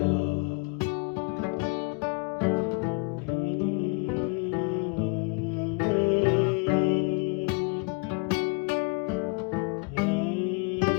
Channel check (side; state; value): right; quieter; 30.3 dB